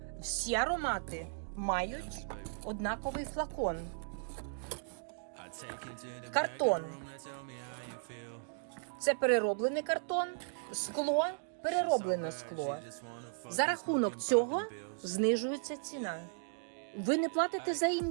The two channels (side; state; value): left; silent; digital silence